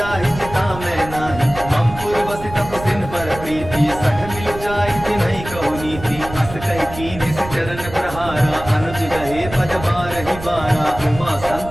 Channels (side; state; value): right; noise; rumble, 12 dB below the sound